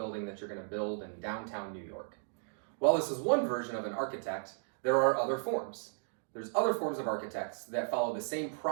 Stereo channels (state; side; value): silent; left; digital silence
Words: that you're going to build in downtown New York. While this is one version of an architect, there are other forms. There's other forms of architects that follow the same